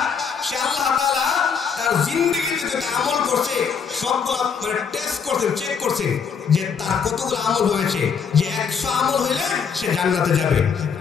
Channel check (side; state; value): right; quieter; 6.4 dB